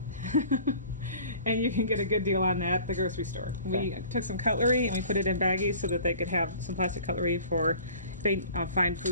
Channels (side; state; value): both; inverted; correlation -0.47